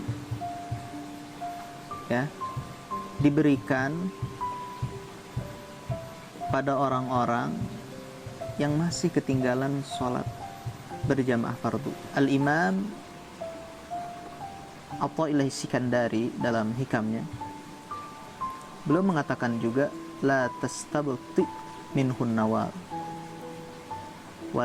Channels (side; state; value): both; identical; correlation 1.00